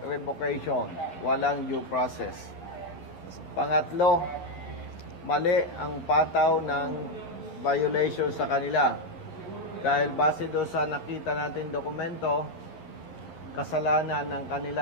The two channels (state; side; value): late; right; 11 ms